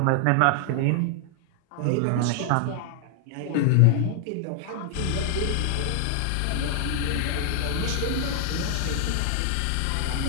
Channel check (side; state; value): both; different; correlation 0.00